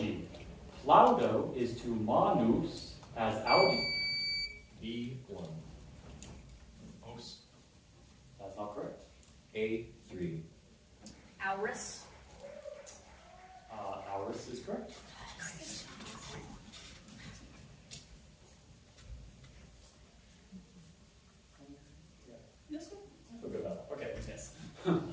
Plaudo is to manus as Audi. B1. Os. That's not correct. A3. Auris. Auris is correct. Feel good about that. Okay, yes.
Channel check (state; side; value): identical; both; correlation 1.00